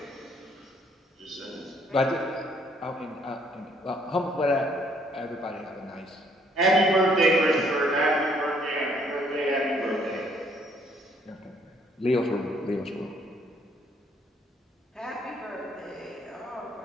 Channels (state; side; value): normal; both; correlation 0.65